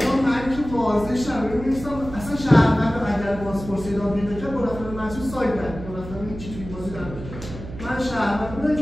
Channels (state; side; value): noise; right; hum, 12 dB below the sound